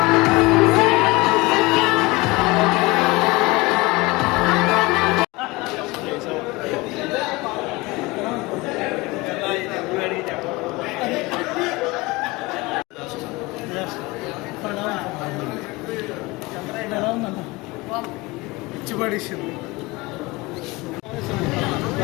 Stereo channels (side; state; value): right; quieter; 22.7 dB